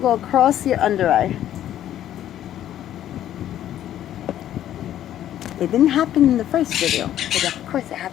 across your under eye. It didn't happen in the first video, but of course it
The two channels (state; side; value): quieter; right; 11.7 dB